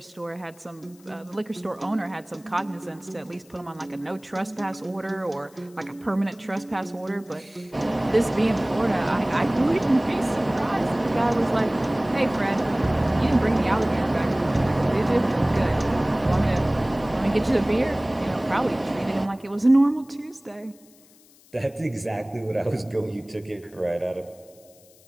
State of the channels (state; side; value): noise; left; hiss, 27 dB below the sound